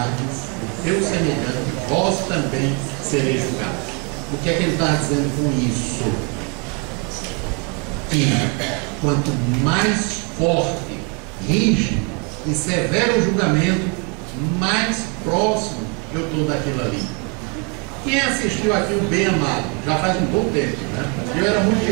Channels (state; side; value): quieter; left; 33.0 dB